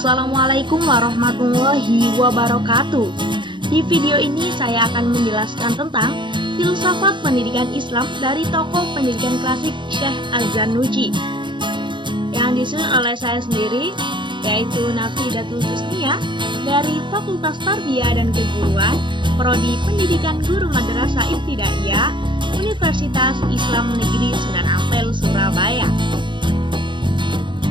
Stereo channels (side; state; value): left; late; 0.23 ms